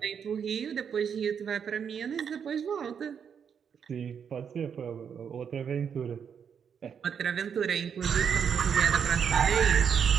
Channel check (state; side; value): quieter; left; 7.4 dB